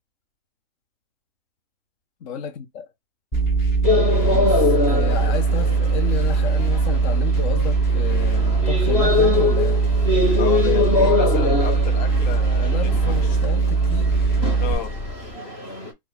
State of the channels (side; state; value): right; late; 3.0 ms